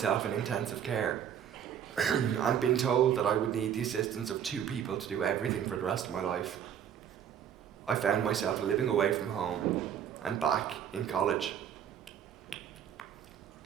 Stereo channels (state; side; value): quieter; left; 9.1 dB